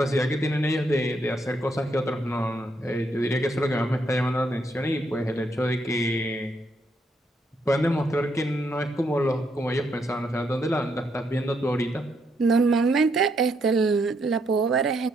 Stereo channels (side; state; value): both; normal; correlation 0.75